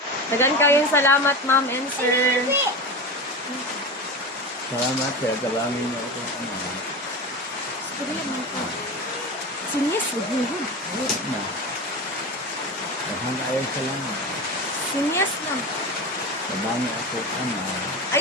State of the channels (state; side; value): normal; both; correlation 0.25